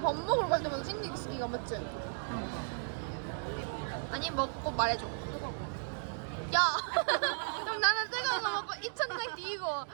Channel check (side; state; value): left; silent; digital silence